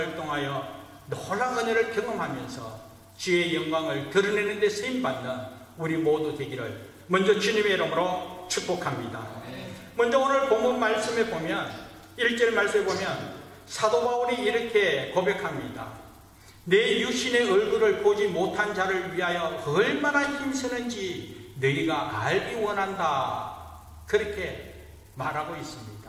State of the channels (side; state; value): both; identical; correlation 1.00